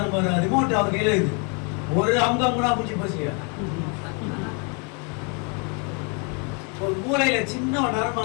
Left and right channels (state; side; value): quieter; right; 35.8 dB